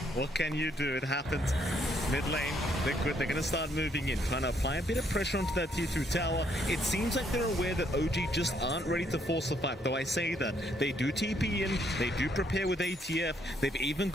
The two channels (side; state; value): both; normal; correlation 0.71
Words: What can you do? It happens. Mid lane, Liquid, they're going to start moving in, trying to apply a bit of pressure onto that tier 2 tower. It seems like they're aware that OG just aren't ready to force the fight, though I say that. They do TP in, they do prepare with ATF, they've even